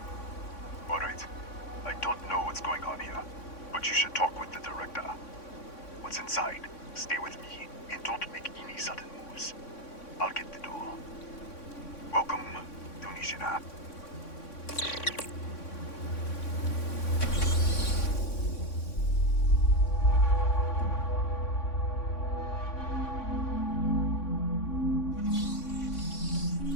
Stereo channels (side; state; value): right; late; 3.6 ms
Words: Alright. I don't know what's going on here, but you should talk with the director. What's inside? Stay with me, and don't make any sudden moves. I'll get the door. Welcome to Nishina.